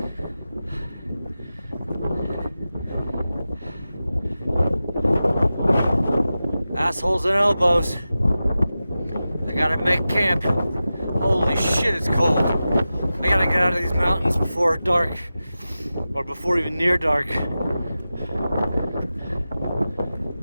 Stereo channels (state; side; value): inverted; both; correlation -0.94